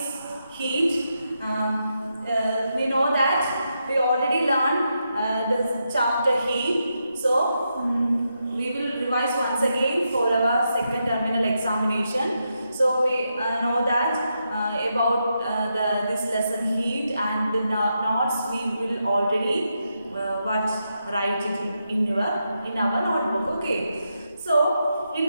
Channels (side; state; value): both; inverted; correlation -0.84